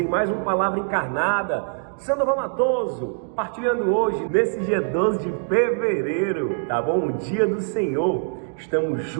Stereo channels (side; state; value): left; silent; digital silence